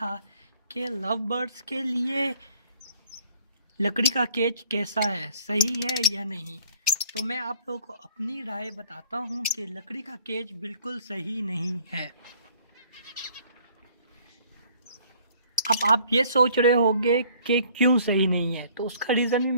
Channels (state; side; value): inverted; both; correlation -0.57